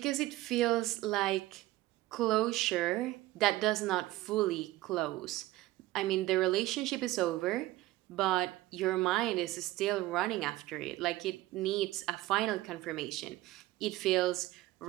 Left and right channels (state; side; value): quieter; left; 17.2 dB